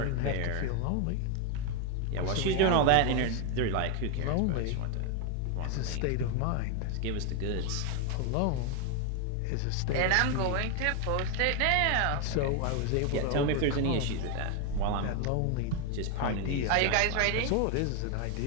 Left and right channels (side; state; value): both; different; correlation 0.01